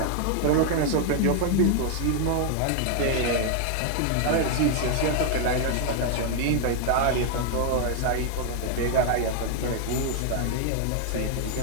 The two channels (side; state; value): both; different; correlation 0.00